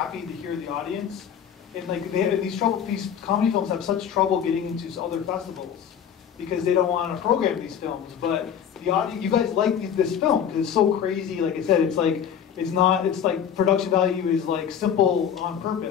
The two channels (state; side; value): quieter; right; 8.4 dB